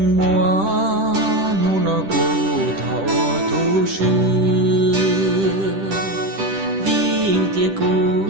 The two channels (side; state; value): left; late; 10 ms